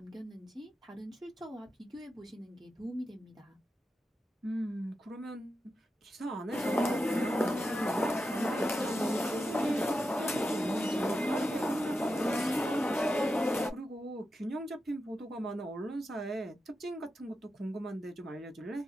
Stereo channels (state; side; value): normal; both; correlation 0.89